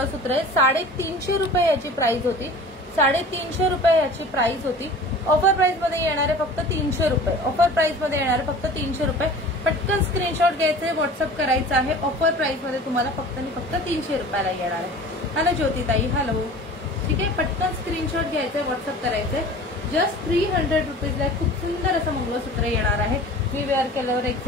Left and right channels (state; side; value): normal; both; correlation 0.41